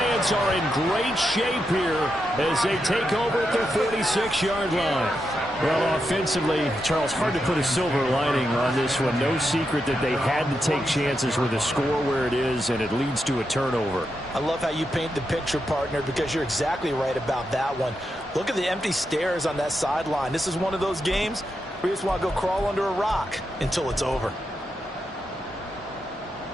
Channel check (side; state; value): both; normal; correlation 0.85